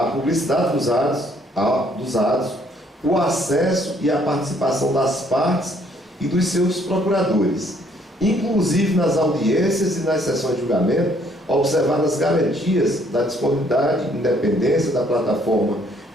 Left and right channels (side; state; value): both; normal; correlation 0.64